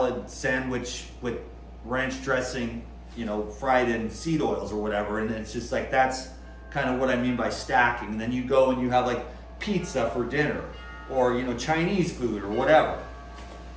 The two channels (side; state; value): both; identical; correlation 1.00